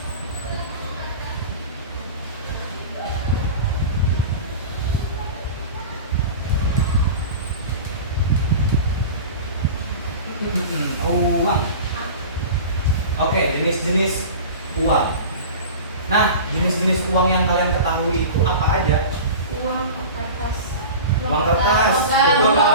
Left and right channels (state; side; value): inverted; both; correlation -0.34